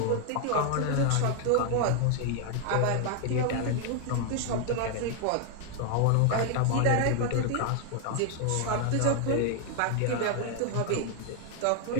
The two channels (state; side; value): different; both; correlation 0.00